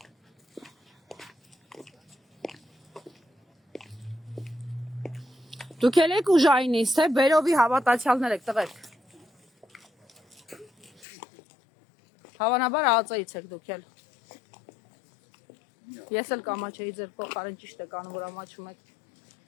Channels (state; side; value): drops out; right; at 11.1 s